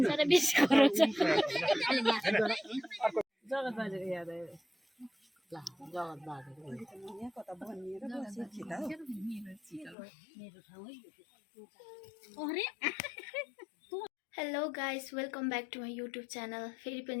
hello guys welcome back to my YouTube channel फेरि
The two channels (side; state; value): right; drops out; at 10.0 s